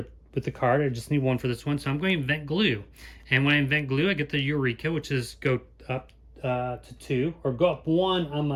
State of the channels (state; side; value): identical; both; correlation 1.00